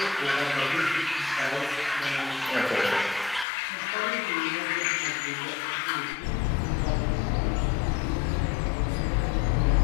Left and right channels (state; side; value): drops out; right; at 3.5 s